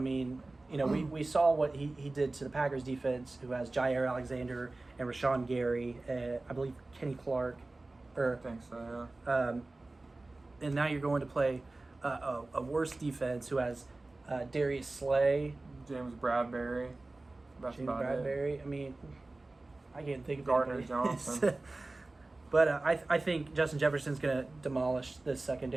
mean, we saw what he did to the Packers defense, who has Jair Alexander and Rashawn Gary, I believe Kenny Clark. I think so, yeah. And now you're going to play a worse defense who has Darius Slay, James Bradbury. That's about it. I mean, I can't think of Gardner anybody. Johnson. But I think Justin Jefferson's going to demolish this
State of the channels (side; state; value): left; quieter; 3.1 dB